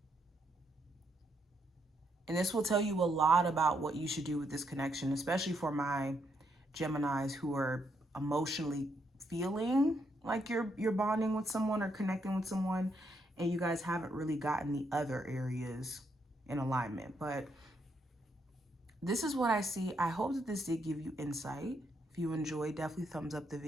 And this will tell you a lot about what you should do with this connection, especially for my Geminis who are emotionally feeling like you're bonding with someone or connecting with someone, and you guys haven't really gotten the other areas in alignment. But this is what I see. I hope that this did give you insight. If you enjoyed, definitely thumbs up the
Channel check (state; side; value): normal; both; correlation 0.76